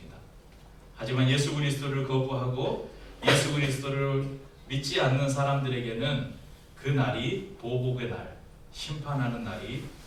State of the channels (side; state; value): both; identical; correlation 1.00